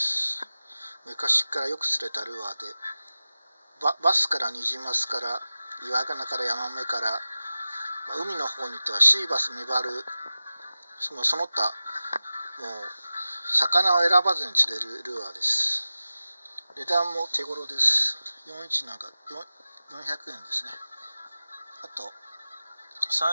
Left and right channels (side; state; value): both; inverted; correlation -0.95